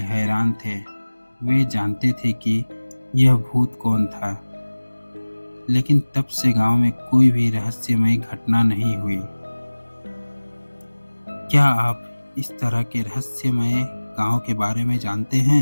हैरान थे। वे जानते थे कि यह भूत कौन था, लेकिन तब से गांव में कोई भी रहस्यमय घटना नहीं हुई। क्या आप इस तरह के रहस्यमय गांव के बारे में जानते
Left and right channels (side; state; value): both; inverted; correlation -1.00